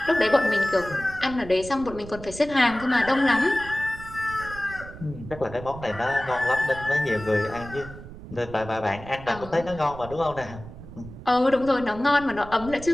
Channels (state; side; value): noise; right; rumble, 14 dB below the sound